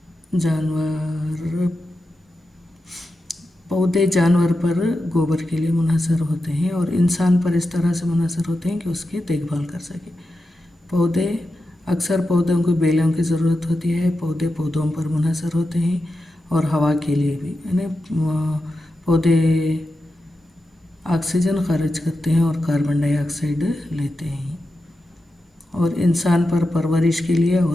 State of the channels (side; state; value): both; normal; correlation 0.90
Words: پودے جانور پر گوبر کے لیے منحصر ہوتے ہیں اور انسان پر اس طرح سے منحصر ہوتے ہیں کہ اس کی دیکھ بھال کر سکے۔ اکثر پودوں کو بیلوں کی ضرورت ہوتی ہے، پودے پودوں پر منحصر ہوتے ہیں اور ہوا کے لیے بھی یعنی پودے آکسیجن خارج کرتے ہیں اور کاربن ڈائی آکسائڈ لیتے ہیں اور انسان پر پرورش کے لیے